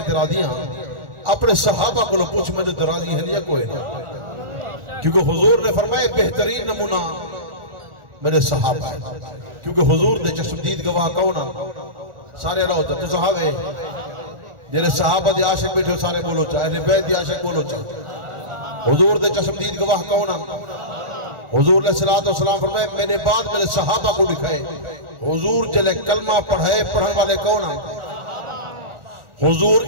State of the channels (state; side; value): late; left; 1.4 ms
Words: تے راضیاں اپنے صحابہ کو پوچھ میں تے راضی ہیں یا کوئی نہ کیونکہ حضور نے فرمایا بہترین نمونہ میرے صحابہ ہیں کیونکہ حضور دے چشمدید گواہ کون ہیں سارے اللہ ہوتا تو صحابے جنہیں صحابہ دے عاشق بیٹھے سارے بولو چاہے اہل بیت دے عاشق بولو چاہے حضور دے چشمدید گواہ کون ہیں حضور علیہ السلام فرمائے میں نے بعد میرے صحابہ کو لکھائے حضور جلے کلمہ پڑھائے پڑھن والے کون ہیں حضور